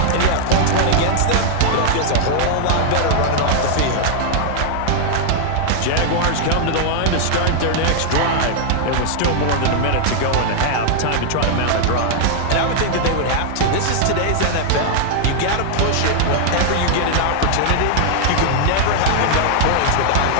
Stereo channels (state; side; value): different; both; correlation 0.00